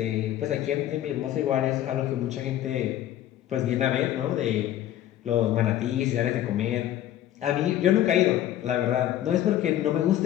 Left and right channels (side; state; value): right; quieter; 12.4 dB